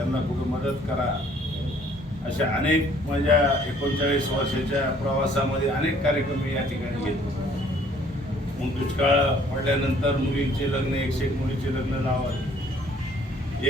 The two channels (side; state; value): both; normal; correlation 0.59